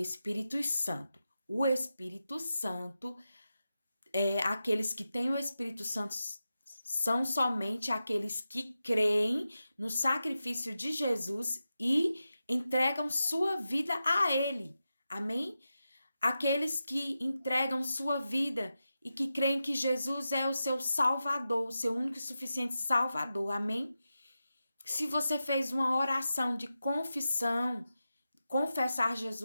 Santo. O Espírito Santo aqueles que têm o Espírito Santo são somente aqueles que creem no sacrifício de Jesus e entregam sua vida a Ele. Amém? Aqueles que entregam sua vida e que creem que Jesus é o seu Salvador, o seu único e suficiente Salvador. Amém? Se você fez uma oração de confissão, confessar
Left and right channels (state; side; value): inverted; both; correlation -0.91